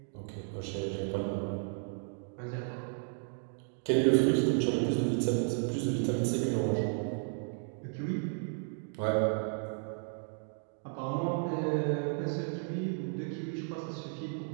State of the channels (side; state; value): left; silent; 55 dB below the other